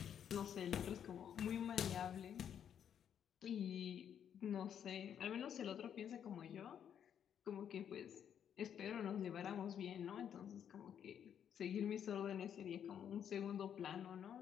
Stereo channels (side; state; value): right; quieter; 8.8 dB